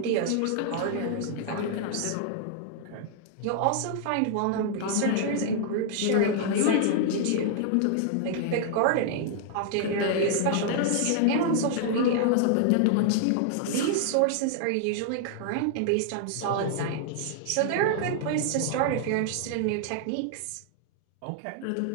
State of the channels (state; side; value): different; both; correlation -0.01